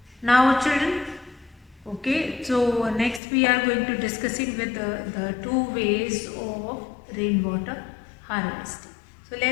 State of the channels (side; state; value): right; drops out; at 3.2 s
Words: now children, okay, so next we are going to discussing with the two ways of rainwater harvesting. So